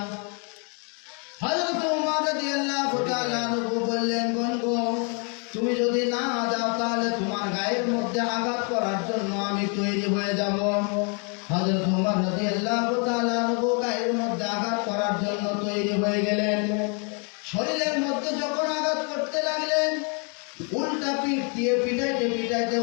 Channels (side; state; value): right; quieter; 36.7 dB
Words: হযরত ওমর রাদিয়াল্লাহু তাআলা আনহু বললেন, বোন গো, তুমি যদি না যাও তাহলে তোমার গায়ের মধ্যে আঘাত করার জন্য আমি তৈরি হয়ে যাব। হযরত ওমর রাদিয়াল্লাহু তাআলা আনহু গায়ের মধ্যে আঘাত করার জন্য তৈরি হয়ে গেলেন। শরীরের মধ্যে যখন আঘাত করতে লাগলেন, উল্টা পিঠ দিয়ে পিটাইতে পিটাইতে